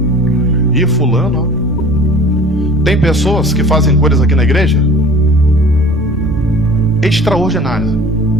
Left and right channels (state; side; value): normal; both; correlation 0.44